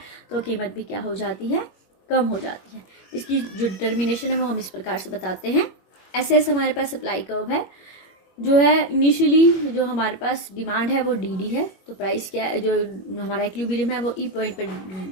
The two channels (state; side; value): late; right; 21 ms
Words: तो कीमत भी क्या हो जाती है, कम हो जाती है। इसकी जो डिटर्मिनेशन है वो हम इस प्रकार से बताते हैं। ऐसे हमारे पास सप्लाई कर्व है, जो है इनिशियली जो हमारे पास डिमांड है वो डी है, तो प्राइस क्या है, जो हमारा इक्विलिब्रियम है वो ई पॉइंट